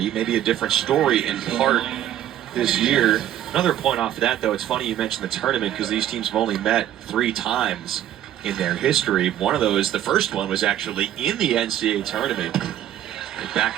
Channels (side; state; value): left; quieter; 11.6 dB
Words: Maybe a different story in part this year. Another point off of that, though, it's funny you mentioned the tournament because these teams have only met 3 times in their history. One of those, the first one, was actually in the NCAA tournament back